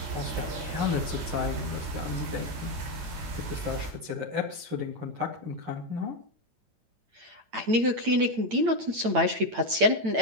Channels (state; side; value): late; left; 8.9 ms